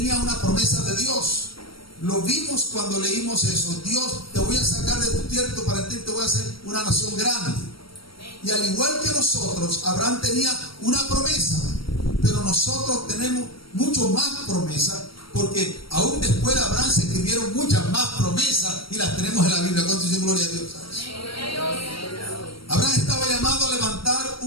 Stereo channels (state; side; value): late; right; 0.75 ms